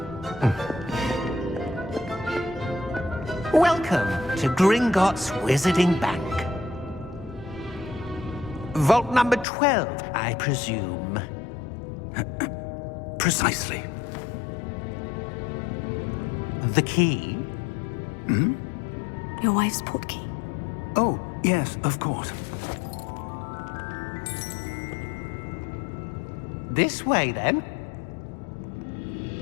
Welcome to Gringotts Wizarding Bank. Vault number 12, I presume. Precisely. The key? Your wife's portkey. Oh, yes, of course. This way, then.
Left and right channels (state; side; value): drops out; right; at 9.5 s